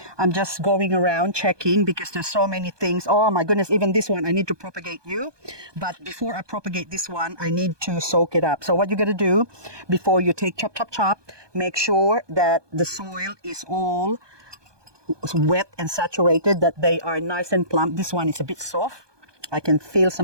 I'm just going around checking because there's so many things. Oh my goodness, even this one, I need to propagate you. But before I propagate this one, I need to soak it up. So what you're going to do before you take chop, make sure that the soil is all wet and saturated, that they are nice and plump. This one is a bit soft. I can feel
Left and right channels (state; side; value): late; left; 1.2 ms